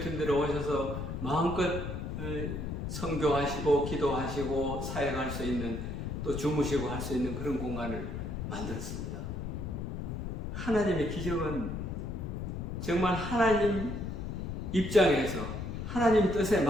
오셔서 마음껏 선교하시고 기도하시고 사역할 수 있는, 또 주무시고 할 수 있는 그런 공간을 만들었습니다. 하나님의 기적은 정말 하나님 입장에서 하나님 뜻에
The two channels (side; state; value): left; noise; rumble, 4 dB below the sound